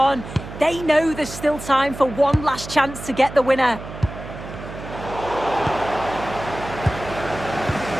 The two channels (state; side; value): noise; right; hum, 12 dB below the sound